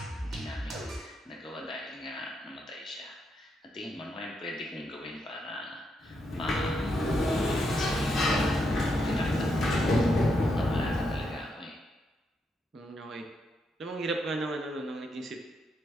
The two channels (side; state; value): both; normal; correlation 0.80